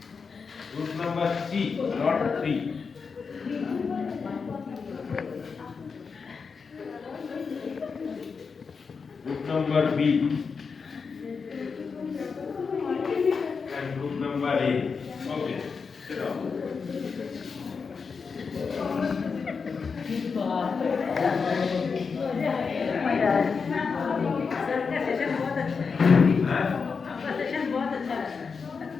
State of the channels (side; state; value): right; quieter; 5.3 dB